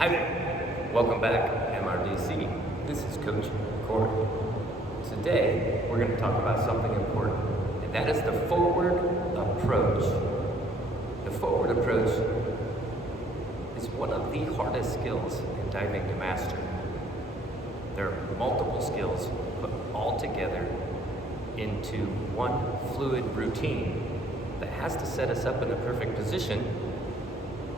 there. Welcome back, MRDC. This is Coach Corey. Today, we're going to talk about something important, and that is the forward approach. The forward approach is one of the hardest skills in diving to master. There are multiple skills put all together into one fluid routine that has to set us up in the perfect position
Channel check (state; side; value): normal; both; correlation 0.62